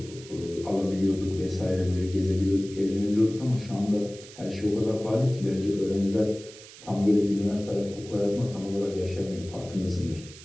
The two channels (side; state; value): right; noise; hiss, 18 dB below the sound